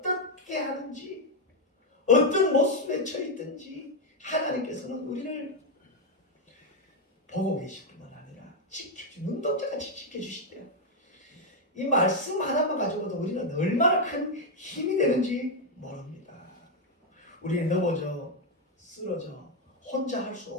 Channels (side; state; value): both; normal; correlation 0.02